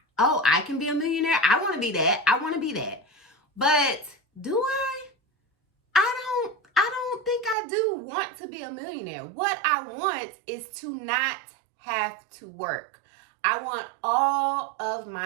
oh, I can be a millionaire. I want to be that. But do I? I don't think I do want to be a millionaire. What I want is to not have to work. I want all of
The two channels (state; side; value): drops out; left; at 7.6 s